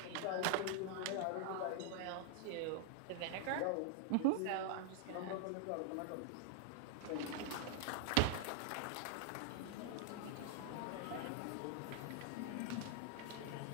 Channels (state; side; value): different; both; correlation -0.01